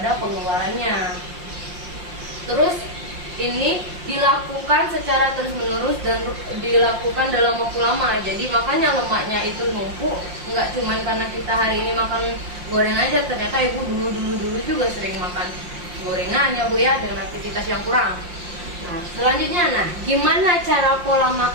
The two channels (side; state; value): left; late; 5.7 ms